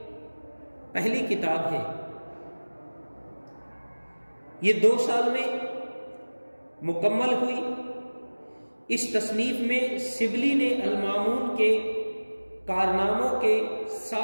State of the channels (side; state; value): both; inverted; correlation -1.00